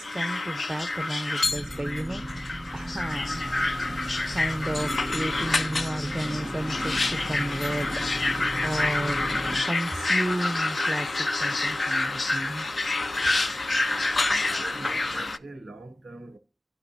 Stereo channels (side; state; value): both; normal; correlation 0.96